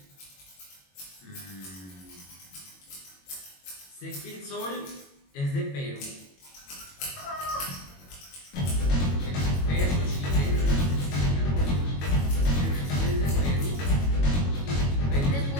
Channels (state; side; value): late; right; 22 ms